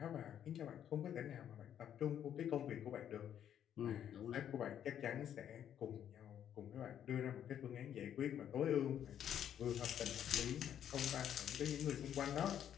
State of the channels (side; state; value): right; quieter; 9.8 dB